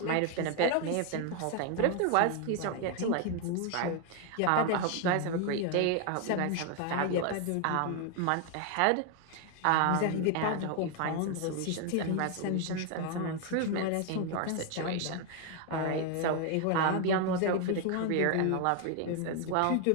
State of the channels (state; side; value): different; both; correlation 0.00